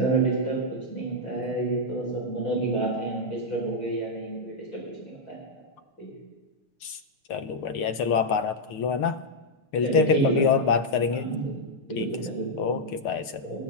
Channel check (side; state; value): right; late; 6.6 ms